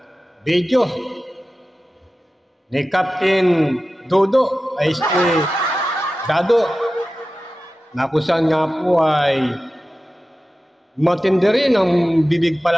video ni Captain Dodo ay si Dado na kung saan nga po ay matindi rin ang bibig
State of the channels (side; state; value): both; normal; correlation 0.94